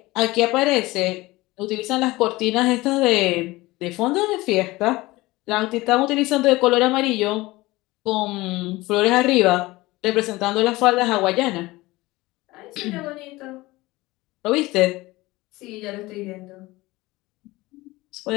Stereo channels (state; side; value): quieter; right; 20.2 dB